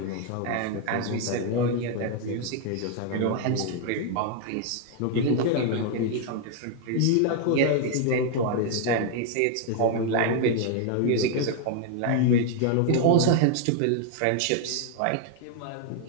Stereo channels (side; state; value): both; different; correlation 0.00